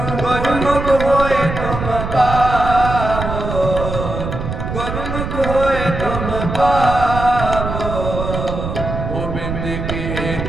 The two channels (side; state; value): right; noise; rumble, 5 dB below the sound